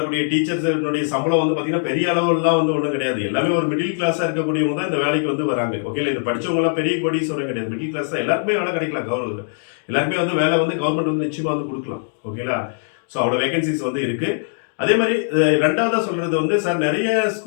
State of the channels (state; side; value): silent; right; digital silence